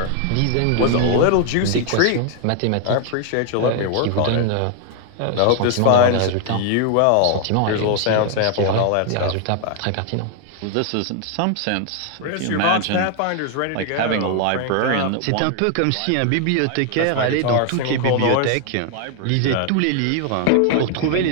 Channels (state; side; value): different; both; correlation 0.00